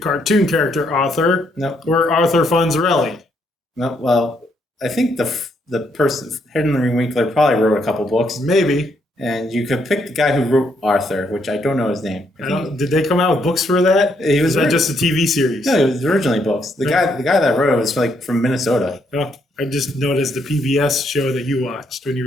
character Arthur Nope. or Arthur Fonzarelli. No, well, I think the person, Henry Winkler, probably wrote a couple books, Maybe. and you could pick the guy who wrote Arthur, which I don't know his name. Did they come out with books for that? He was Is that just a TV series? No, it was originally books. The guy that wrote it was from Minnesota. Oh, I just noticed the PBS show that you watched when you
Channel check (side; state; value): both; normal; correlation 0.74